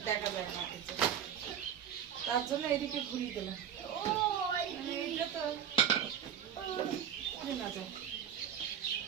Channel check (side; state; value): left; quieter; 8.9 dB